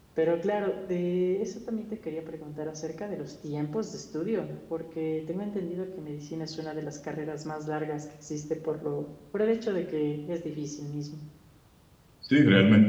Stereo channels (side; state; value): both; identical; correlation 1.00